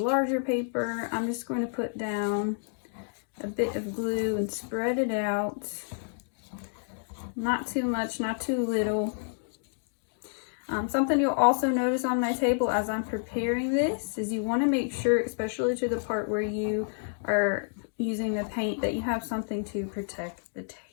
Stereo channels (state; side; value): silent; right; digital silence